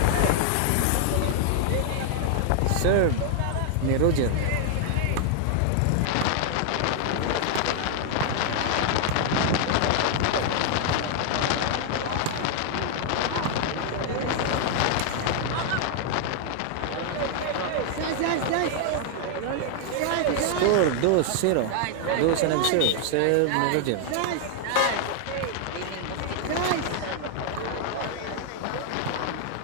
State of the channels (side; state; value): both; different; correlation 0.00